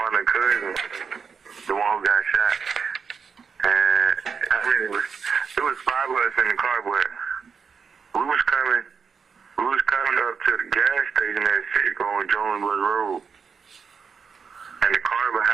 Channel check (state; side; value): quieter; left; 5.9 dB